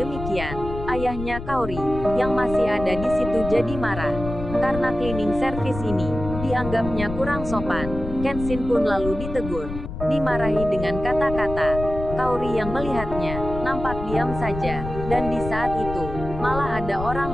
demikian, ayahnya Kaori yang masih ada di situ jadi marah. Karena cleaning service ini dianggapnya kurang sopan, Kenshin pun lalu ditegur, dimarahi dengan kata-kata. Kaori yang melihatnya nampak diam saja, dan di saat itu malah ada orang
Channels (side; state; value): left; noise; rumble, 8 dB below the sound